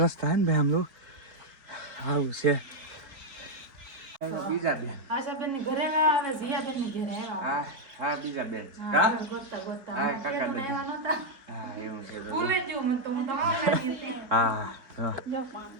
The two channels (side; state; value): left; late; 4.0 ms